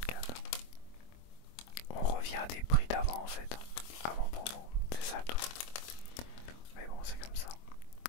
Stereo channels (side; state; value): right; late; 24 ms